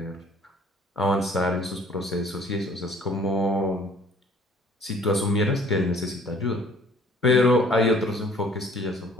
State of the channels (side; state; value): both; normal; correlation 0.55